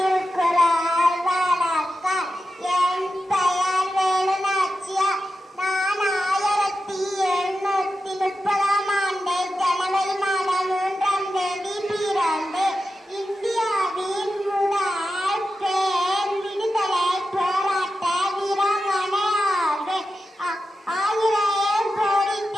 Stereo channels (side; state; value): both; normal; correlation 0.91